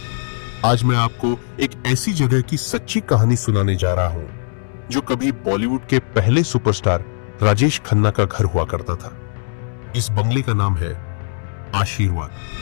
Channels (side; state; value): right; silent; digital silence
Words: आज मैं आपको एक ऐसी जगह की सच्ची कहानी सुनाने जा रहा हूं जो कभी बॉलीवुड के पहले सुपरस्टार राजेश खन्ना का घर हुआ करता था। इस बंगले का नाम है